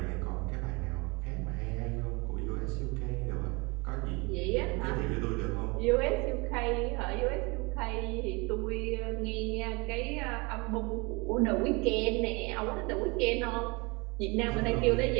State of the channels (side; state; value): left; quieter; 27.4 dB